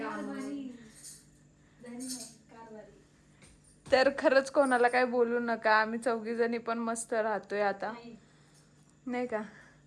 तर खरंच कोणाला काय बोलू नका, आम्ही 4 जणी पण मस्त राहतोय आता, नाही का.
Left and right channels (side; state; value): both; identical; correlation 1.00